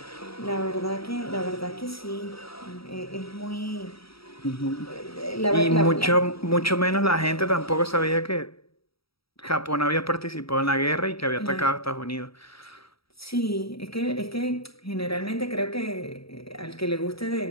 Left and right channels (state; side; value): late; right; 0.76 ms